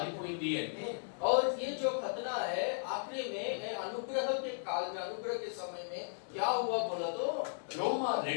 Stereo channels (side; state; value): right; silent; digital silence